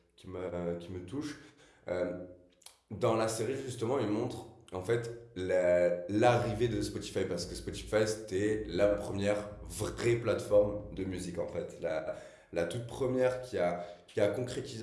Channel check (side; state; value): both; identical; correlation 1.00